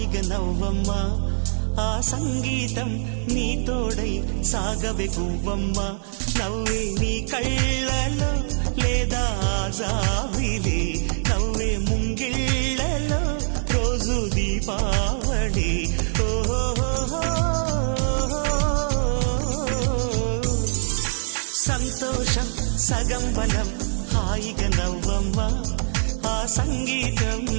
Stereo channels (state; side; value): silent; left; 63 dB below the other